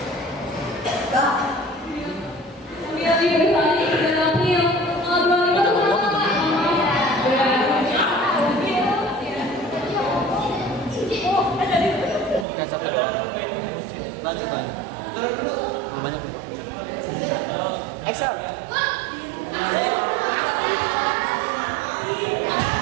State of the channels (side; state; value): left; drops out; at 12.5 s